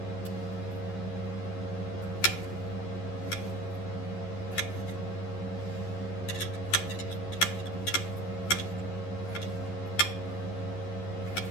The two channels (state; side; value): late; right; 11 ms